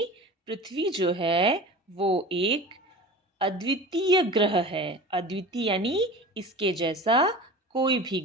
पृथ्वी जो है वो एक अद्वितीय ग्रह है. अद्वितीय यानी इसके जैसा कोई भी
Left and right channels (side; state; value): both; normal; correlation 0.35